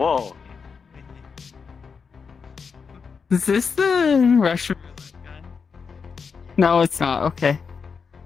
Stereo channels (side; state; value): right; quieter; 5.7 dB